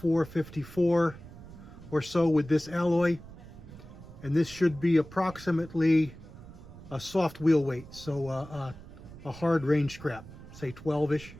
or so with this alloy, and this should be approximately a soft wheel weight, so a hard range scrap, say 12-ish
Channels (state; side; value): noise; right; rumble, 17 dB below the sound